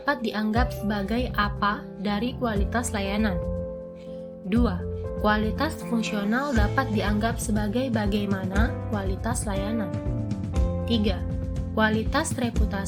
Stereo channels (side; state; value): both; identical; correlation 1.00